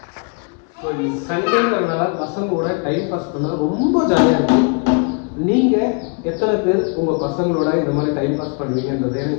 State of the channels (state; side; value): quieter; right; 37.6 dB